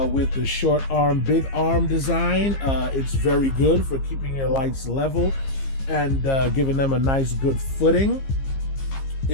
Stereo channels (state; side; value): late; right; 15 ms